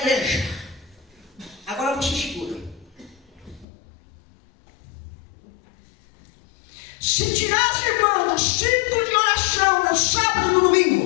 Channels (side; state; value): right; drops out; at 3.7 s